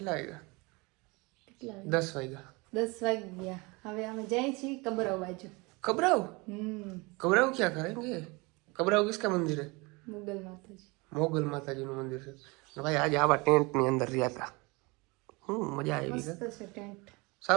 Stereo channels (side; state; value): left; quieter; 26.2 dB